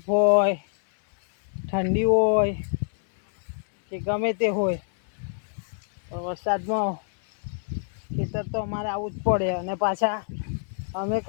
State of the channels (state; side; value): silent; right; 60 dB below the other